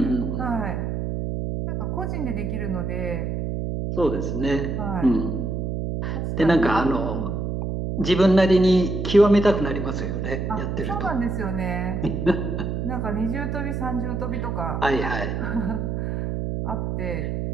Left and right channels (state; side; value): noise; right; hum, 2 dB below the sound